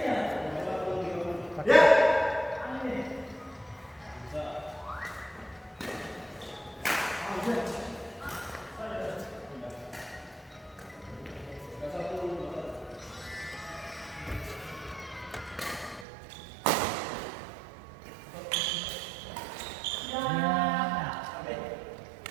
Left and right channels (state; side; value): drops out; left; at 16.1 s